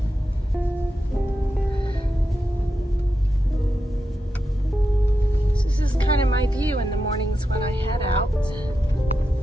This is kind of my view in the mornings when I head out.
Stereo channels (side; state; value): both; normal; correlation 0.88